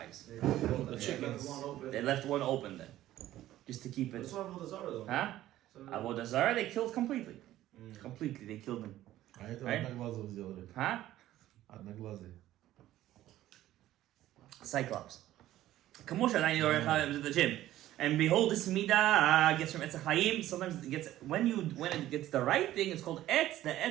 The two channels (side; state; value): left; quieter; 14.1 dB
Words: The chickens. They left one open then, just to keep it. That's why Avodah Zarah though. Huh? Avodah Zarah, they killed completely. Completely, they killed him. Right? Huh? Cyclops. Kamosha, I know the gym. And behold, this midah gets from Etz HaChaim. Sometimes it gets when it gets the right thing, it's called Etz, the